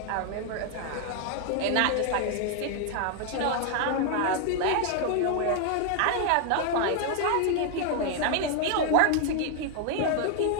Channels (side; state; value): both; different; correlation 0.00